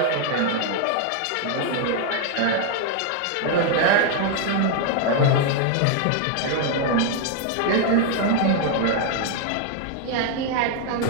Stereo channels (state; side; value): different; both; correlation 0.00